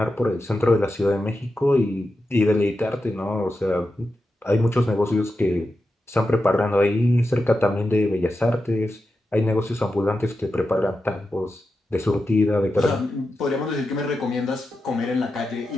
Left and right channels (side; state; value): both; normal; correlation 0.90